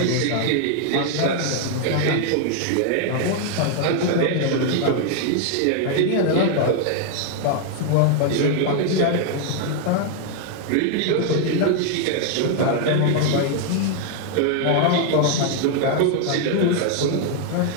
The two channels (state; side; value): different; both; correlation 0.00